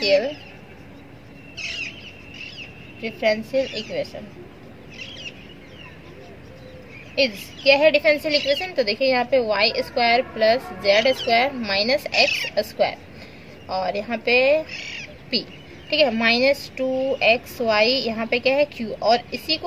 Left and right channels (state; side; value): identical; both; correlation 1.00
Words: equation is, क्या है डिफरेंशियल इक्वेशन, तो देखिए यहाँ पे y² plus z² minus x², और यहाँ पे p, ठीक है, -2xy यहाँ पे क्या है q, और इसी